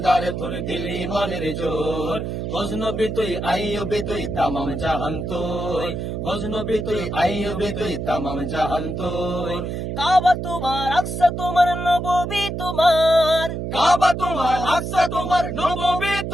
তোর দিল ইমানের জোর, গজনবী তুই আইয়ুবী তুই তামাম জাহান তোর, গজনবী তুই আইয়ুবী তুই তামাম জাহান তোর। কাবা তোমার, আকসা তোমার, নববী তোমার, কাবা তোমার, আকসা তোমার, নববী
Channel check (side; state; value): right; noise; hum, 4 dB below the sound